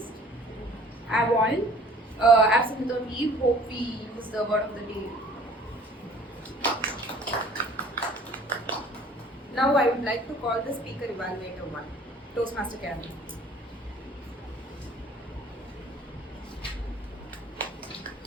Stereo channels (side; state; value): both; normal; correlation 0.51